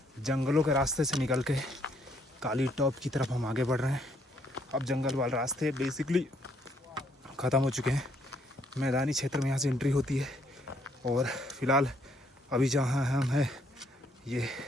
जंगलों के रास्ते से निकल के काली टॉप की तरफ हम आगे बढ़ रहे हैं। अब जंगल वाले रास्ते बेसिकली ख़त्म हो चुके हैं, मैदानी क्षेत्र में यहाँ से एंट्री होती है। और फिलहाल अभी जहाँ हम हैं ये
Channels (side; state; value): both; normal; correlation 0.69